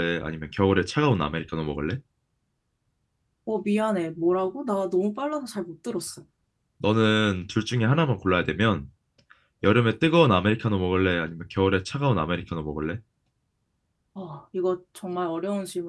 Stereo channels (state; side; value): identical; both; correlation 1.00